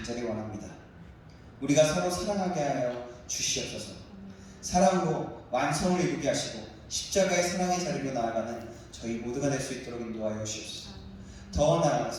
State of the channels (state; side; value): identical; both; correlation 1.00